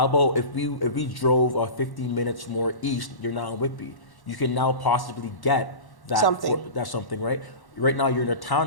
about if we drove 15 minutes more east, you're now in Whitby. You can now possibly get that that's something, right? Right now, you're in a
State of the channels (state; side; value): late; right; 1.1 ms